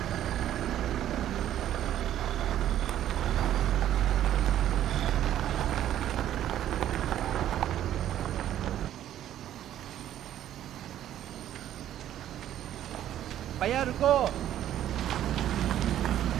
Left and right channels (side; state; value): left; quieter; 11.7 dB